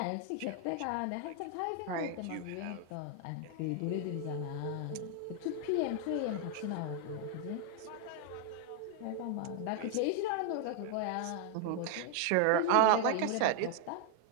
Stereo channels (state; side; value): different; both; correlation 0.00